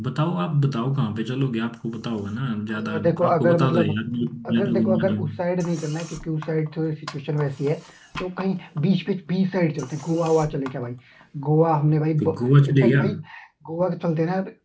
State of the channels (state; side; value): identical; both; correlation 1.00